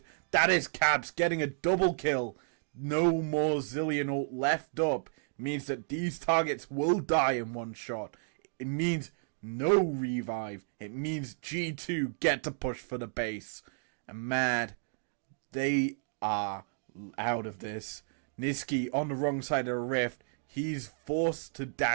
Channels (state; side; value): silent; left; digital silence